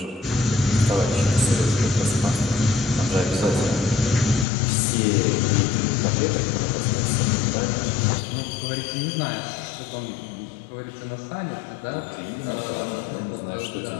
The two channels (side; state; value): right; drops out; at 4.5 s